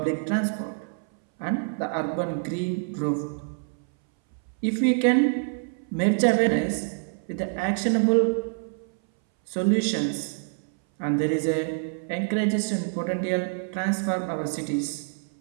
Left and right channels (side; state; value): left; silent; 60 dB below the other